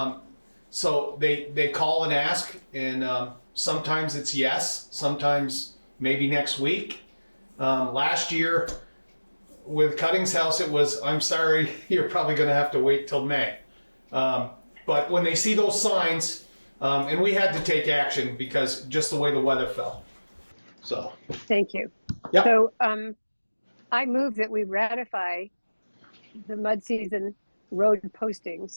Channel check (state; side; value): inverted; both; correlation -1.00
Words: so they call and ask, and sometimes it's yes, sometimes maybe next week. Last year with Cutting's house, it was, I'm sorry, you're probably going to have to wait till May. But when they see those signs, and we had to take action because just the way the weather fell. So. Thank you. Yep. So I move that we ratify the mud season road